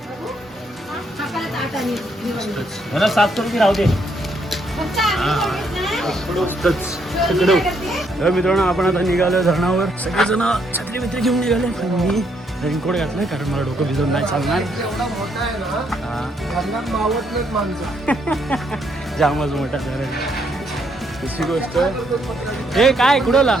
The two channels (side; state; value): both; normal; correlation 0.73